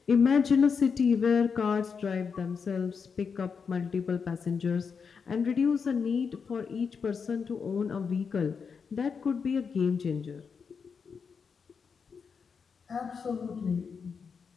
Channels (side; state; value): right; quieter; 5.9 dB